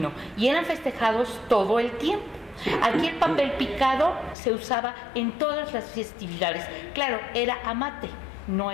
y eran festejados todo el tiempo. Aquí el papel picado se usaba en todas las festividades. Claro, era amate, no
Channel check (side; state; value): right; drops out; at 4.4 s